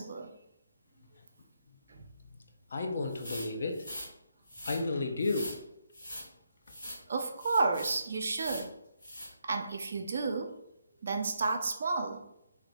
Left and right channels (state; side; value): inverted; both; correlation -0.79